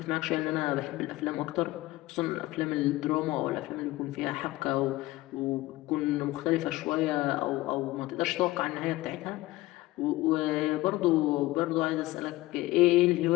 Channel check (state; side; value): quieter; right; 18.5 dB